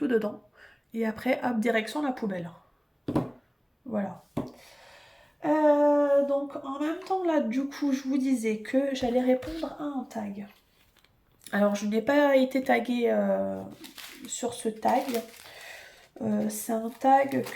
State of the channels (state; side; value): identical; both; correlation 1.00